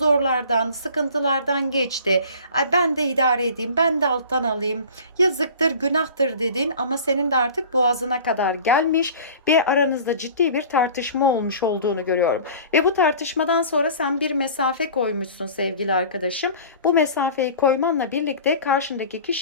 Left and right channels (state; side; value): inverted; both; correlation -0.42